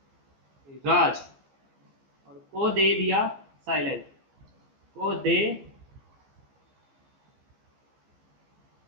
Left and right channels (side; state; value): left; late; 15 ms